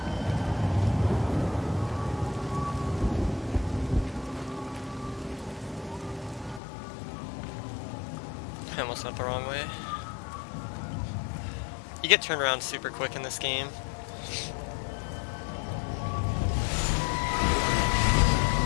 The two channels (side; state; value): right; drops out; at 6.6 s